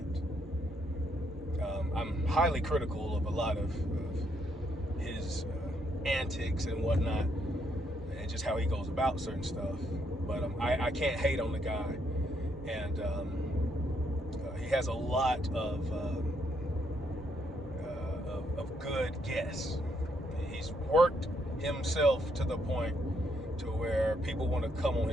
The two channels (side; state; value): both; normal; correlation 0.74